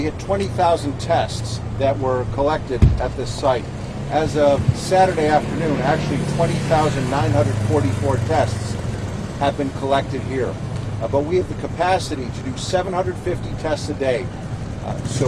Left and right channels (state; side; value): identical; both; correlation 1.00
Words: had 20,000 tests that were collected at this site. As of Saturday afternoon, actually 20,944 tests have been collected here. But we have the capacity to do 750 tests a day.